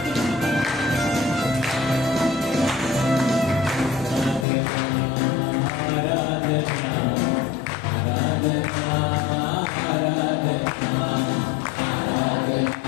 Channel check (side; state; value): right; drops out; at 4.5 s